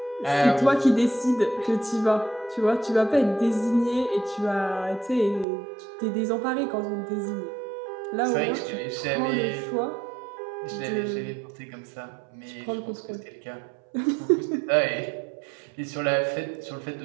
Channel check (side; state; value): left; drops out; at 5.5 s